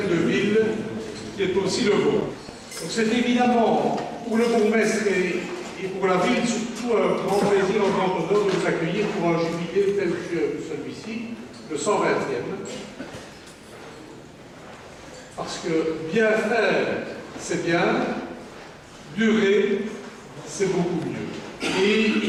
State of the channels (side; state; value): both; identical; correlation 1.00